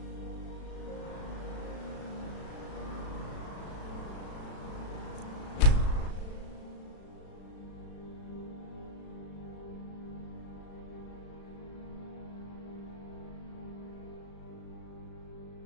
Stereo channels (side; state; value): right; late; 36 ms